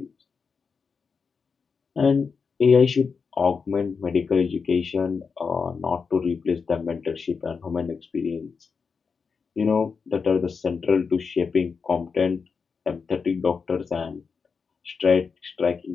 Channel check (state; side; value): quieter; right; 5.4 dB